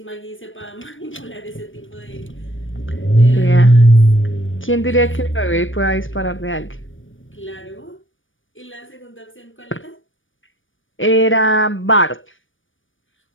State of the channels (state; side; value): late; right; 0.57 ms